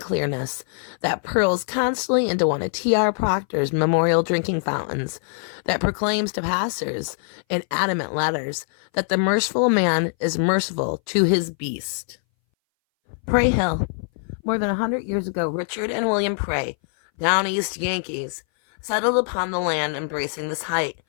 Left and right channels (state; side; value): silent; right; 60 dB below the other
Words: that purls constantly into one of T.R. Proctor's memorial drinking fountains, that proclaims to passers in adamant letters that the merciful man is merciful to his beast. Prey Hill. More than 100 years ago, Richard and William Prey, down east Yankees, settled upon the land embracing this height,